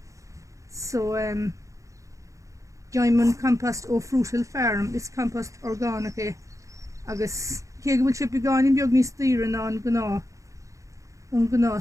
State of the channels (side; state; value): left; late; 0.15 ms